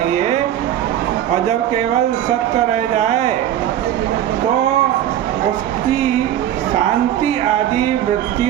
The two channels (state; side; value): quieter; left; 11.5 dB